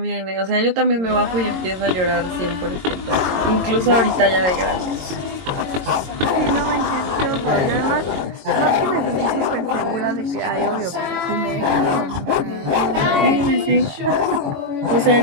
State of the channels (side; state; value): left; late; 22 ms